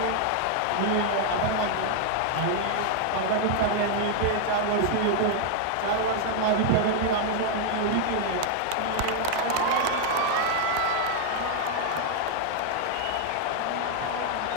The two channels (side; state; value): both; different; correlation 0.00